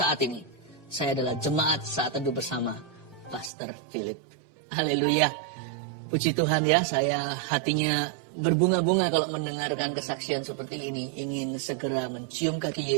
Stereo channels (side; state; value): left; drops out; at 3.5 s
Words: ini saya adalah jemaat saat teduh bersama Pastor Philip. Haleluya. Puji Tuhan ya, saya hatinya berbunga-bunga kalau mendengarkan kesaksian seperti ini. Ingin segera mencium kaki